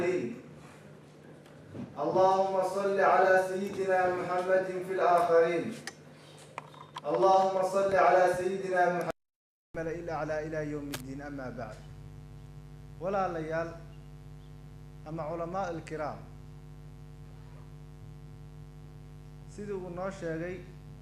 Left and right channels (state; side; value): identical; both; correlation 1.00